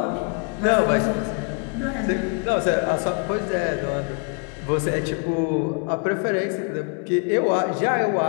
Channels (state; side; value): quieter; right; 37.5 dB